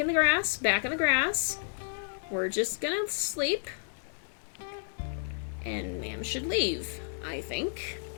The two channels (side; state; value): right; silent; digital silence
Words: the grass. We're just gonna sleep. And ma'am should leave, I think.